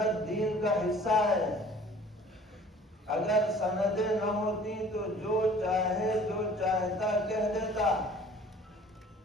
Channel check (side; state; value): both; normal; correlation 0.50